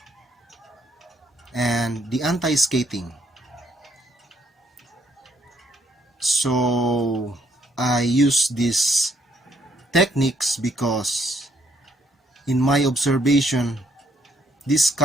and the anti-skating. So I use these techniques because in my observation, this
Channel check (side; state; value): both; normal; correlation 0.70